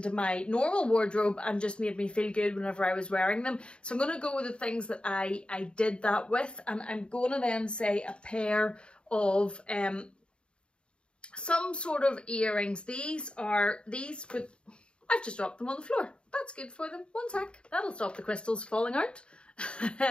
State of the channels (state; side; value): late; right; 0.054 ms